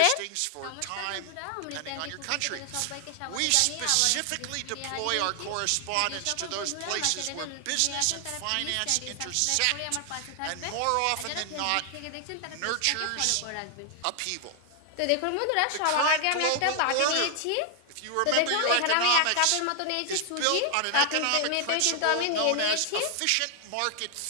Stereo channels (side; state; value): both; different; correlation 0.00